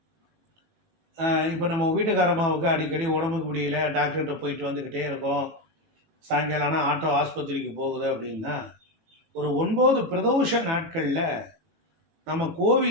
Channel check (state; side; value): late; left; 18 ms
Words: இப்போ நம்ம வீட்டுக்காரம்மாவுக்கு அடிக்கடி உடம்புக்கு முடியல, டாக்டர்கிட்ட போயிட்டு வந்துக்கிட்டே இருக்கோம், சாயங்காலம்னா ஆட்டோ ஆஸ்பத்திரிக்கு போகுது அப்படின்னா ஒரு 9 பிரதோஷ நாட்களில் நம்ம